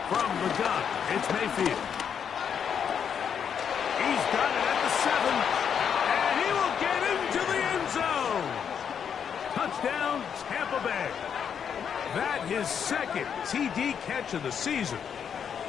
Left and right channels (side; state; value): right; quieter; 7.7 dB